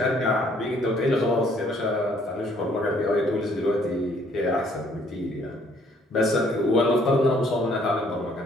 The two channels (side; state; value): both; normal; correlation 0.63